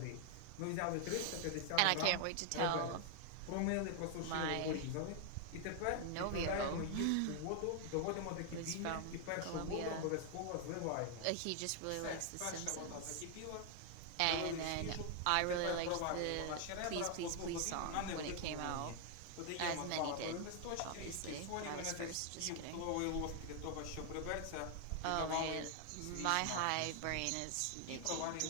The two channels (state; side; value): different; both; correlation 0.00